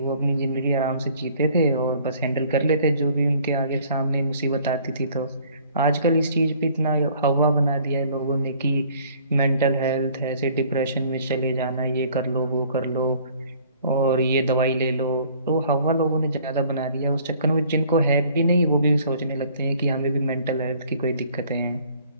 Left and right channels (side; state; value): both; inverted; correlation -0.56